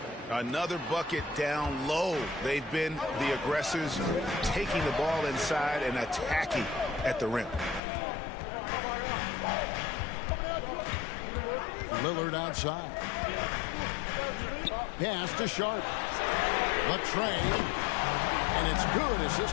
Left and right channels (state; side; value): drops out; right; at 7.8 s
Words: Another bucket down low. They've been the aggressors, taking the ball inside and attacking at the rim. Lillard outside. Pass to Sharp. Latre. And it's good.